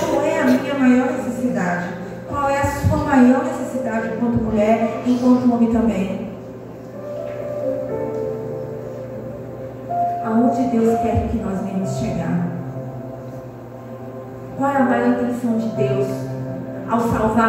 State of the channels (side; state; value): both; identical; correlation 1.00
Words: é a minha maior necessidade? Qual é a sua maior necessidade enquanto mulher, enquanto homem também? Aonde Deus quer que nós venhamos chegar? Qual é a maior intenção de Deus ao